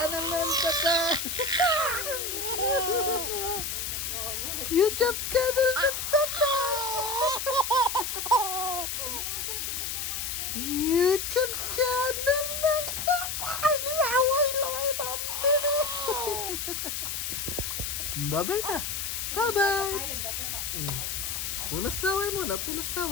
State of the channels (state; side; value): noise; left; hiss, 3 dB below the sound